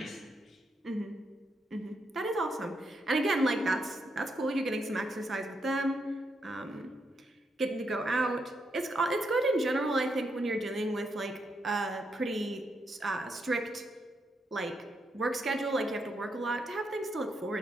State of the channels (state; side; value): normal; both; correlation 0.80